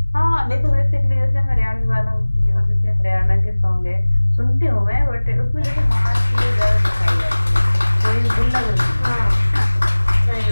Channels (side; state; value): both; inverted; correlation -1.00